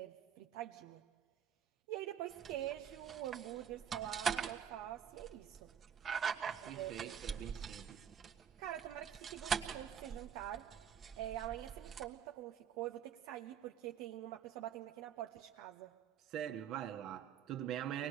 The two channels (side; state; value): left; quieter; 8.6 dB